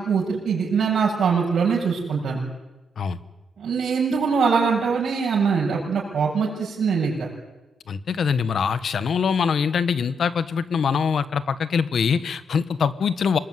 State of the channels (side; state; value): both; normal; correlation 0.75